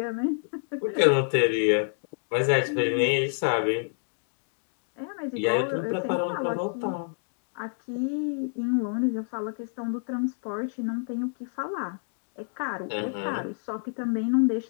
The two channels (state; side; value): silent; right; digital silence